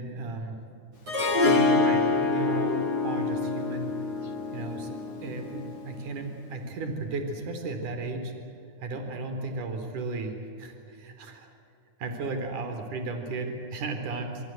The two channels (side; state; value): left; late; 9.6 ms